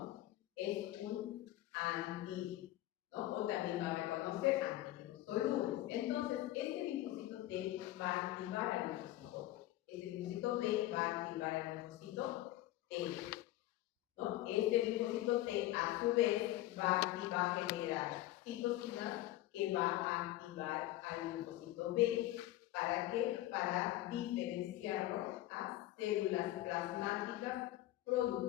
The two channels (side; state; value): right; quieter; 15.8 dB